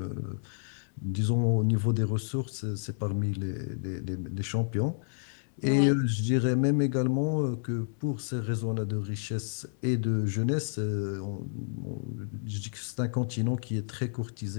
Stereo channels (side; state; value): right; silent; 58 dB below the other